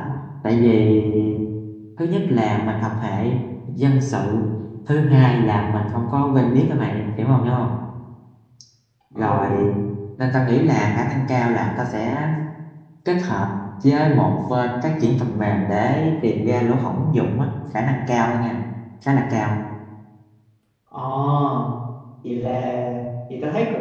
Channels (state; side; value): identical; both; correlation 1.00